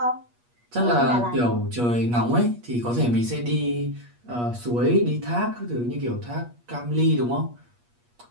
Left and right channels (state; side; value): late; left; 8.4 ms